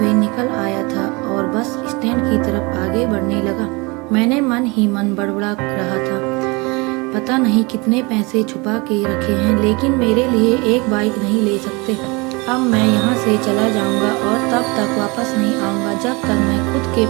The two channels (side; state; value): left; quieter; 26.8 dB